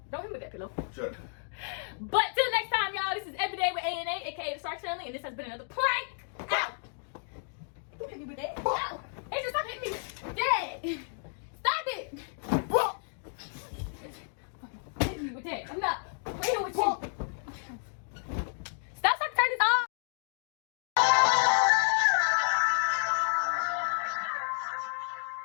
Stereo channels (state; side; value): silent; right; 57 dB below the other